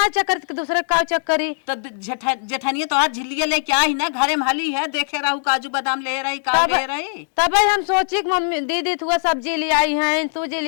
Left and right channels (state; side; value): silent; right; digital silence